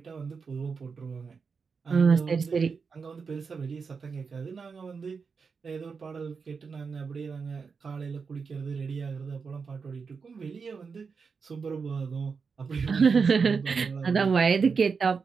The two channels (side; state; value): left; quieter; 5.3 dB